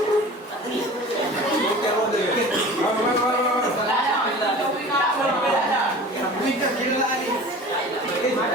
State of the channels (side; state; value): both; normal; correlation 0.40